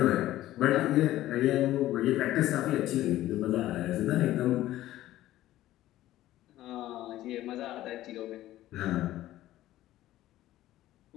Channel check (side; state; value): right; quieter; 14.7 dB